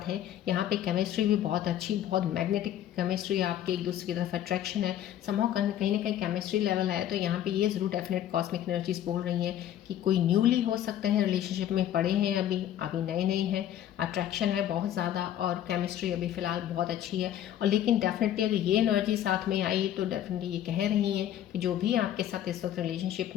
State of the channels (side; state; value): right; quieter; 11.3 dB